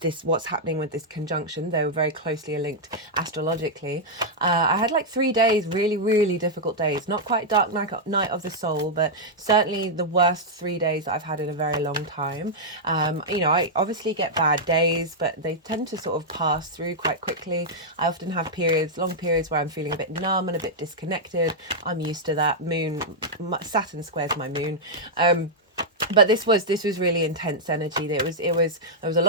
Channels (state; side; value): normal; both; correlation -0.06